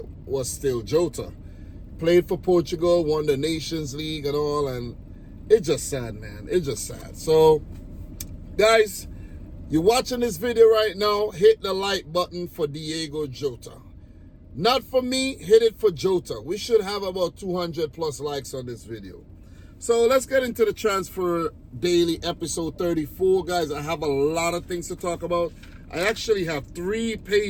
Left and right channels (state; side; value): identical; both; correlation 1.00